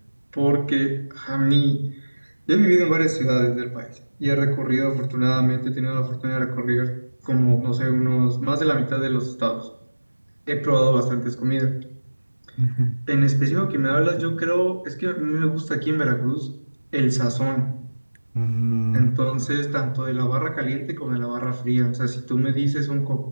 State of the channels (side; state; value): both; inverted; correlation -1.00